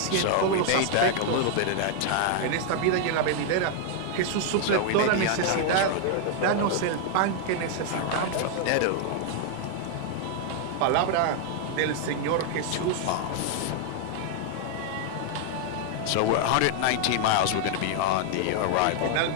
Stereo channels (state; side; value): different; both; correlation 0.00